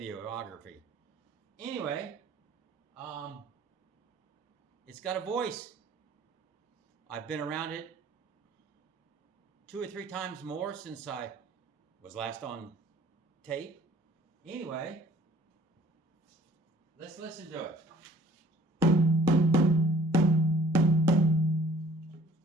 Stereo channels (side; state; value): both; normal; correlation 0.55